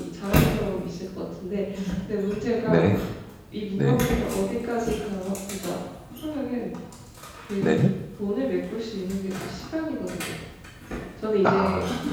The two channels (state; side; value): identical; both; correlation 1.00